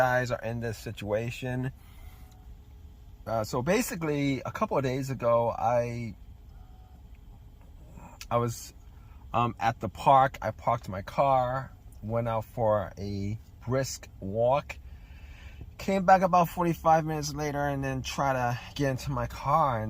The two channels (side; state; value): both; identical; correlation 1.00